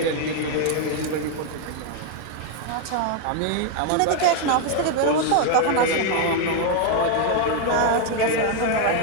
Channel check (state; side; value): different; both; correlation 0.01